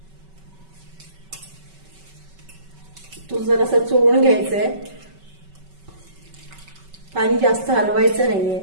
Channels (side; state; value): left; late; 5.3 ms